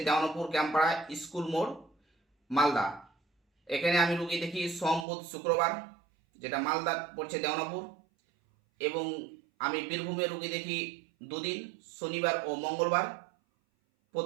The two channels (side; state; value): left; drops out; at 5.1 s